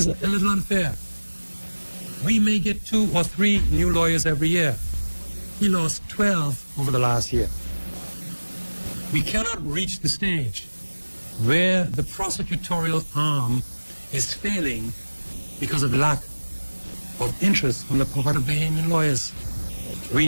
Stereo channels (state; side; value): inverted; both; correlation -1.00